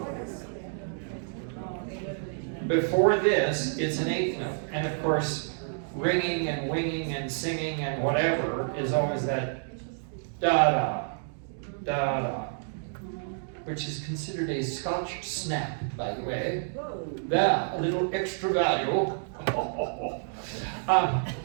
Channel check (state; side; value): silent; left; digital silence